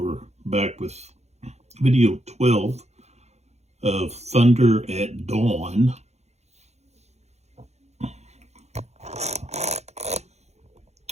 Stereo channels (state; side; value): late; left; 0.32 ms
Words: back with video 12 of Thunder at Dawn.